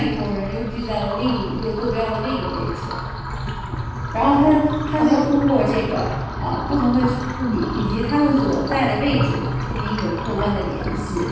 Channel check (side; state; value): both; identical; correlation 1.00